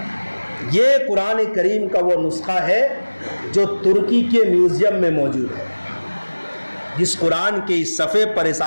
یہ قرآن کریم کا وہ نسخہ ہے جو ترکی کے میوزیم میں موجود ہے، جس قرآن کے اس صفحے پر، اس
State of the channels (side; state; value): both; inverted; correlation -1.00